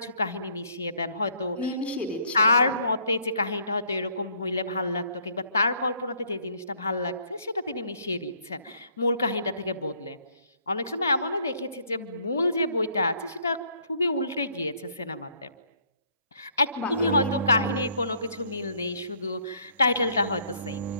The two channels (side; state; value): both; inverted; correlation -0.66